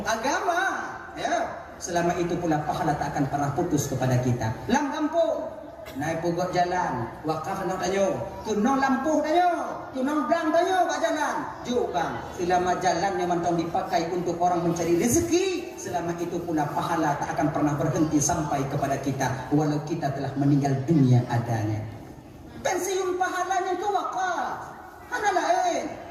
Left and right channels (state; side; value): identical; both; correlation 1.00